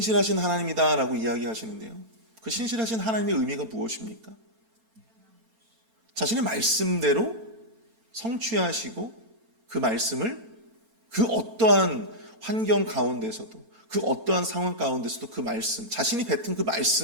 하나님이다라고 이야기하시는데요, 그 신실하신 하나님의 의미가 무엇입니까? 자신의 말씀대로 성취하시고 그 말씀을 그 어떠한 환경 가운데서도, 그 어떠한 상황 가운데서도 그 말씀, 자신이 뱉은 그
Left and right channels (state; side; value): late; left; 9.0 ms